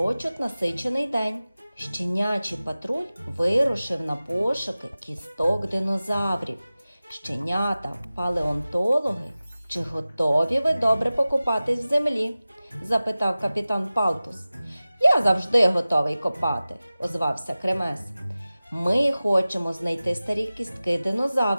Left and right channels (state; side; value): inverted; both; correlation -0.97